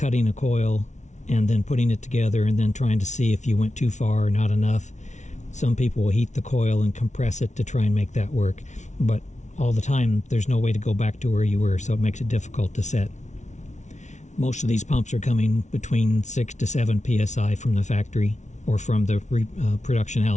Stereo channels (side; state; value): right; late; 0.34 ms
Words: a coil and then putting it together and then trying to see if you went too far or not enough. Some people will heat the coil and compress it to try and make that work, but all the time there's no way to go back to where you were, so it makes it difficult to set. Most of these pumps are coming between 6 to 7 psi from the factory or from the production